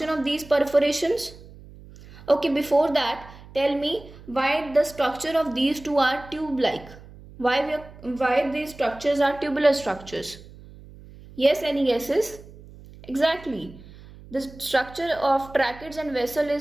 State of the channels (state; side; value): noise; right; hum, 19 dB below the sound